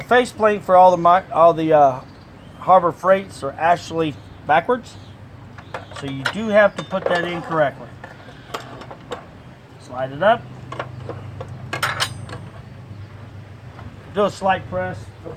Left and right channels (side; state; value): both; identical; correlation 1.00